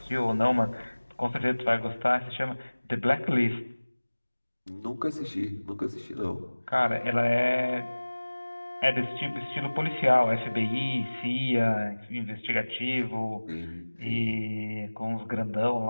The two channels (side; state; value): both; inverted; correlation -1.00